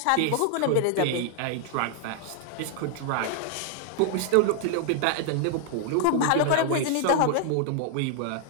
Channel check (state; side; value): different; both; correlation 0.00